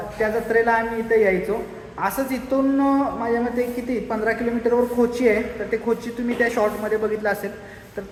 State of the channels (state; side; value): identical; both; correlation 1.00